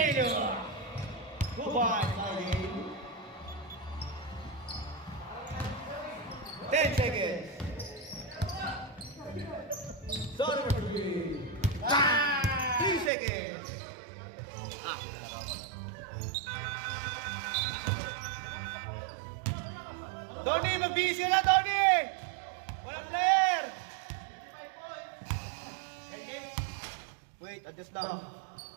Goodbye, Saudi. 10 seconds. Donovan Green. 3 seconds. Donnie, magbisi na, Donnie! Walang player! Wait, adjust lang.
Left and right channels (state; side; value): drops out; left; at 13.1 s